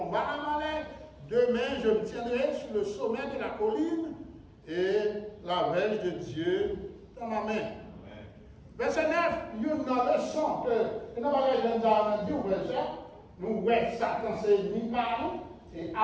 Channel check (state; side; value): identical; both; correlation 1.00